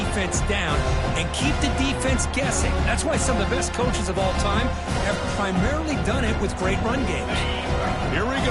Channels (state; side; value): identical; both; correlation 1.00